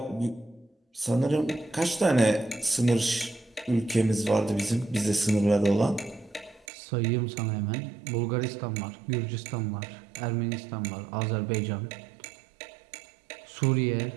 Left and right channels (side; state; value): left; drops out; at 6.7 s